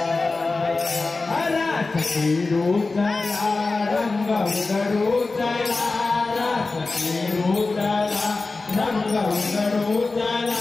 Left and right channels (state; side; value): quieter; right; 3.7 dB